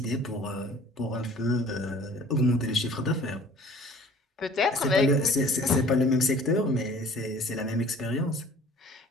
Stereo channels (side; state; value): both; normal; correlation 0.50